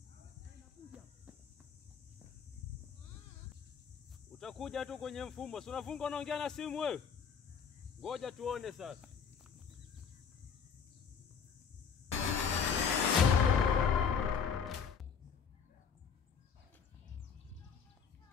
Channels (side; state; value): right; quieter; 6.6 dB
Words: Utakuja tu kwenye mfumo. Si unafunga unaongea na simu wewe? Ngoja tuone sasa.